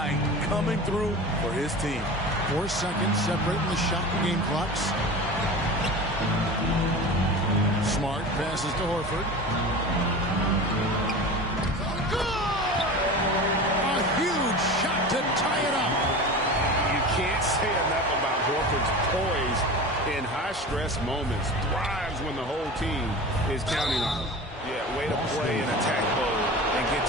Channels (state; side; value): normal; both; correlation 0.32